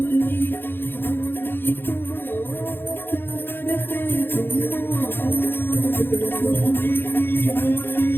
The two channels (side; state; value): right; late; 0.10 ms